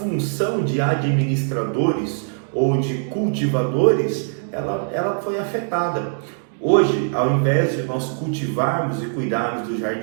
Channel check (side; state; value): left; silent; digital silence